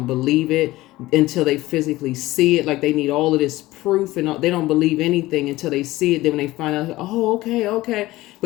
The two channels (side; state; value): right; quieter; 17.9 dB